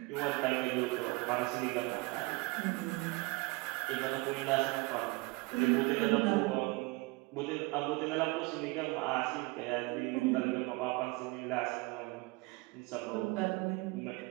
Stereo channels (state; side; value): quieter; left; 24.3 dB